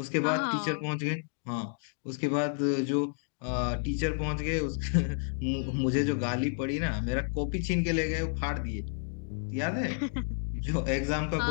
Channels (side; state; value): right; silent; 57 dB below the other